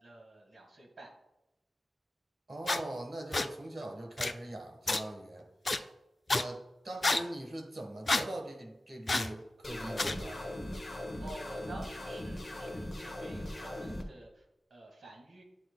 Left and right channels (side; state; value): both; normal; correlation 0.94